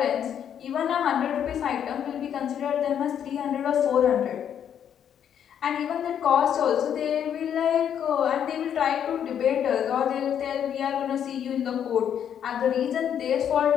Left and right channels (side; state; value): right; quieter; 9.0 dB